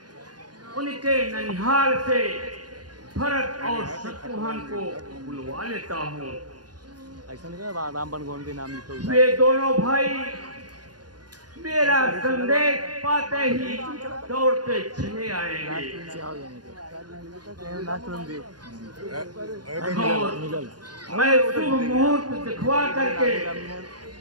उनके ननिहाल से भरत और शत्रुघ्न को बुलवा लेता हूँ। ऐसा नहीं राम बनगोन के नाम लिखो। वे दोनों भाई मेरा संदेश पाते ही दौड़ते चले आएंगे। मैं शुभ मुहूर्त दिखवा करके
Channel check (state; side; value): late; left; 0.69 ms